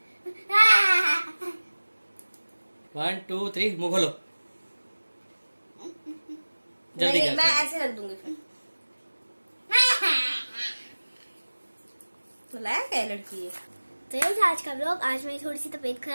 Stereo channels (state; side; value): inverted; both; correlation -1.00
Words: 1 2 3 मुंह खोलो। जल्दी नहीं, कर। मैं ऐसे रख दूंगी फिर। तो लायक है लड़की ये। तो यही था आज का ब्लॉग। आज मेरी थोड़ी सी तबीयत